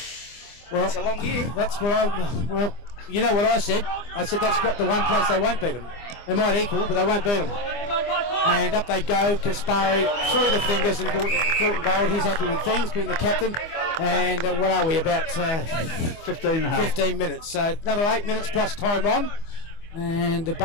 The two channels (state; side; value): late; right; 25 ms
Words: well, it's a long year. That's what you know what I said? I said that's got the one place they won't beat them. They might equal, but they won't beat them. And up they go. Kaspari through the fingers and Courtney Gold. He's happy with things, being the captain. And what are we, about 15 minutes. So another 8 minutes plus time on. And